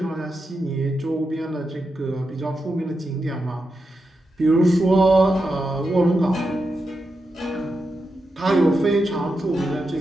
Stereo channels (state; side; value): normal; both; correlation 0.87